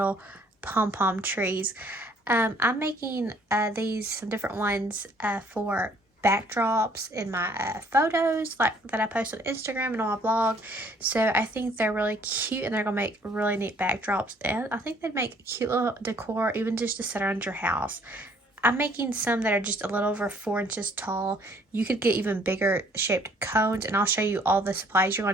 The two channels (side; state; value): both; normal; correlation 0.61